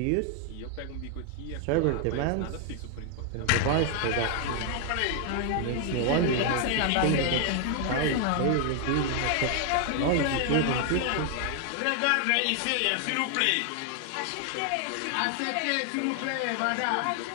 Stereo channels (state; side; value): different; both; correlation 0.00